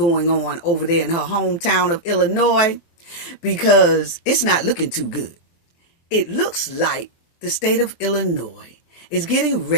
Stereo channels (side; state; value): right; late; 23 ms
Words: on over there in her hometown of Illinois because it's not looking too good. It looks like the state of Illinois is getting